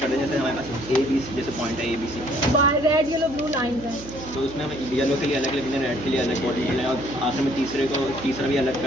दें, जैसे हमारे पास ए बी सी जैसे पॉइंट है A B C, red yellow blue line है। तो उसमें हम येलो के लिए अलग लिख दें, रेड के लिए अलग बॉडी लें और आखिर में तीसरा भी अलग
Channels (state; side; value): noise; right; hum, 14 dB below the sound